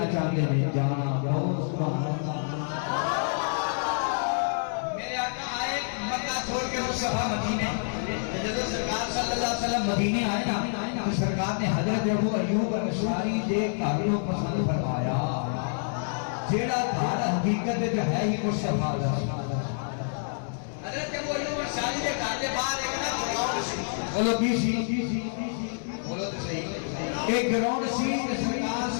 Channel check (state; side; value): silent; right; 60 dB below the other